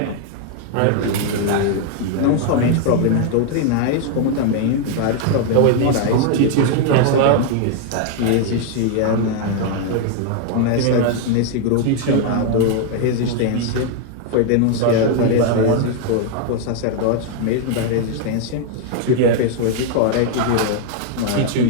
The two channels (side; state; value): both; different; correlation 0.00